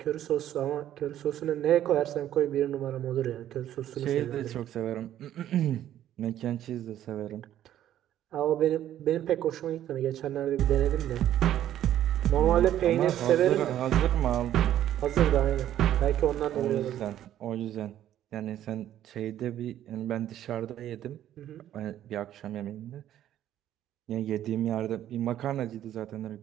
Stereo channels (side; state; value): left; quieter; 11.8 dB